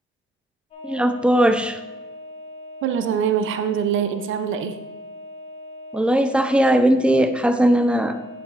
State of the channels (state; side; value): normal; both; correlation 0.73